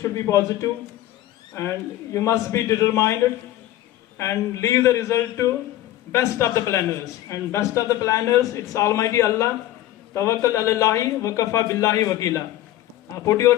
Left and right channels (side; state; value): right; quieter; 14.1 dB